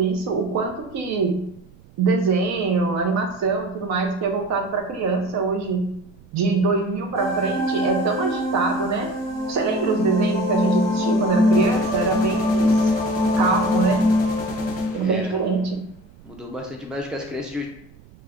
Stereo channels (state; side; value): noise; right; rumble, 25 dB below the sound